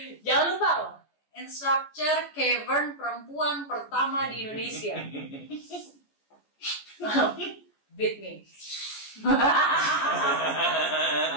Jangan lupa loh, instructor cavern perempuan pertama di Indonesia. Beat me.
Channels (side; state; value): right; late; 14 ms